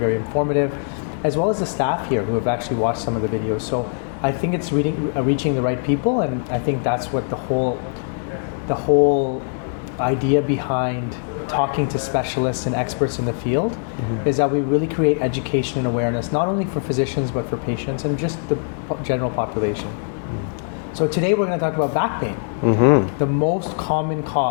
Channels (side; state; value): right; silent; digital silence